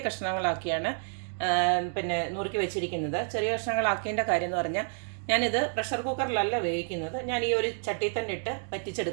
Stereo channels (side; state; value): left; silent; 58 dB below the other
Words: കഷ്ണങ്ങളാക്കിയാണ് നുറുക്കി വെച്ചിരിക്കുന്നത്. ചെറിയ കഷ്ണങ്ങളാക്കിയതിൻ്റെ കാര്യം എന്ന് പറഞ്ഞാൽ ഞാനിത് പ്രഷർ കുക്കറിലല്ല വേവിക്കുന്നത്, ഞാൻ ഈ ഒരു ചട്ടിയിൽ തന്നെ ഇട്ട്